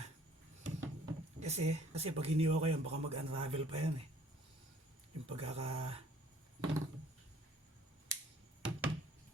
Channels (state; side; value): normal; both; correlation 0.57